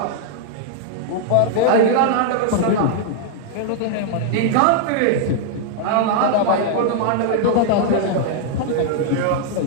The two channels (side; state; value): both; different; correlation -0.01